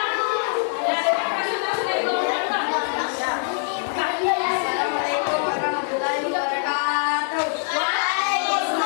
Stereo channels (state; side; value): silent; right; 63 dB below the other